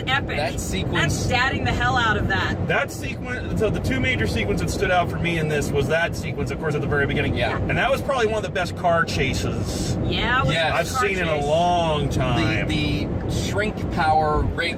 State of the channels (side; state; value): both; identical; correlation 1.00